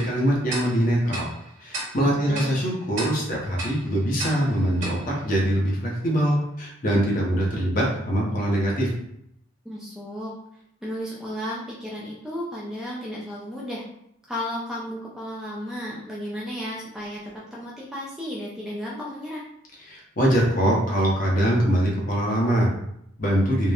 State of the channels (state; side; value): normal; both; correlation 0.71